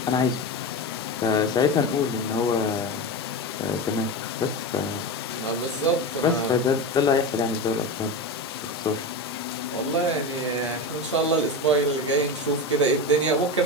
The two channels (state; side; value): normal; both; correlation 0.22